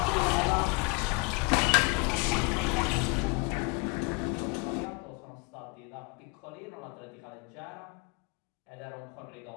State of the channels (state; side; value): quieter; right; 29.6 dB